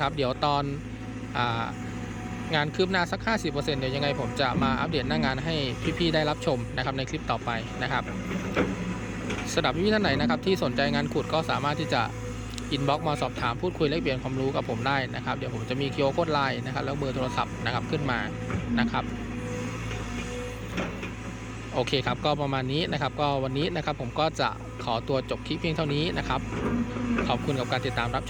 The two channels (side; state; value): both; identical; correlation 1.00